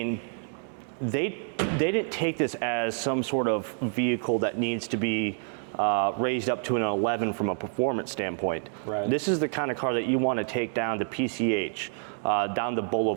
they didn't take this as some sort of vehicle that needs to be raised up to an 11 from a performance standpoint. Right. This is the kind of car that you want to take down to PCH, down the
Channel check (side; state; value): left; silent; 58 dB below the other